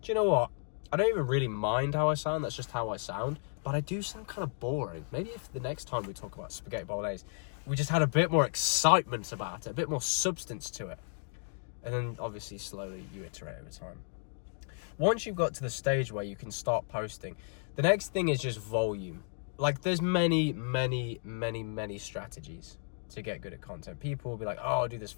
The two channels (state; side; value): silent; right; 56 dB below the other